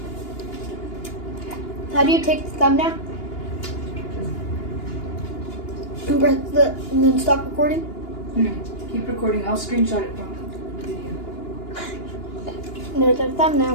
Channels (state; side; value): late; right; 2.9 ms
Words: How do you take the thumbnail? And press and then stop recording? No, keep recording. I'll screenshot it from the video. There's our